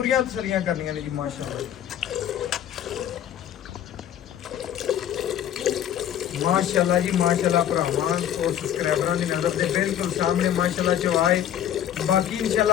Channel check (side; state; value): right; quieter; 10.4 dB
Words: ਤਸੱਲੀਆਂ ਕਰਨੀਆਂ ਨੇ ਜੀ ਮਾਸ਼ਾਅੱਲਾ। ਮਾਸ਼ਾਅੱਲਾ ਜੀ ਮਾਸ਼ਾਅੱਲਾ ਭਰਾਵਾਂ ਔਰ ਸਬਸਕ੍ਰਾਈਬਰਾਂ ਦੀ ਨਜ਼ਰ ਦੇ ਬਿਲਕੁਲ ਸਾਹਮਣੇ ਮਾਸ਼ਾਅੱਲਾ ਚਵਾਏ। ਬਾਕੀ